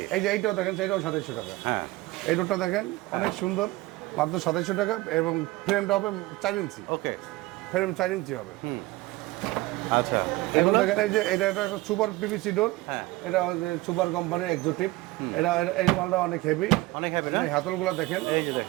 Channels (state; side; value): quieter; left; 20.0 dB